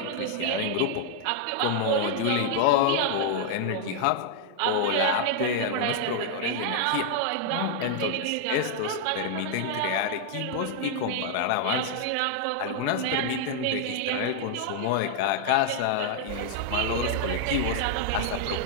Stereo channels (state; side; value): different; both; correlation 0.00